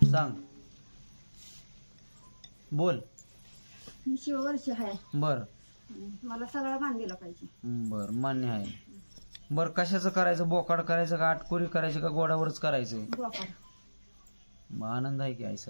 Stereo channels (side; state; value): both; inverted; correlation -1.00